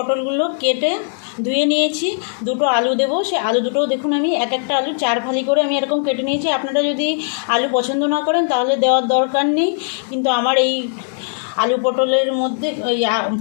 কেটে ধুয়ে নিয়েছি। দুটো আলু দেবো, সেই আলু দুটোও দেখুন আমি একটা আলু 4 ফালি করে আমি এরকম কেটে নিয়েছি। আপনারা যদি আলু পছন্দ না করেন তাহলে দেওয়ার দরকার নেই, কিন্তু আমার এই আলু পটলের মধ্যে, ওই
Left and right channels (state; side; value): silent; right; 67 dB below the other